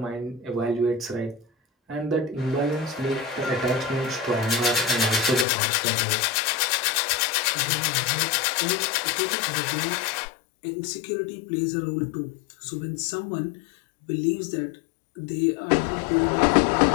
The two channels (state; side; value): drops out; right; at 5.5 s